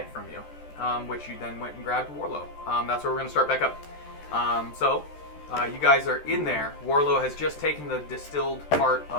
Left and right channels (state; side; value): late; right; 13 ms